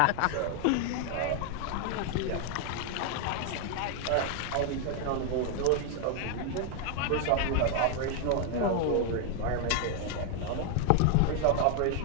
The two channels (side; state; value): both; different; correlation 0.00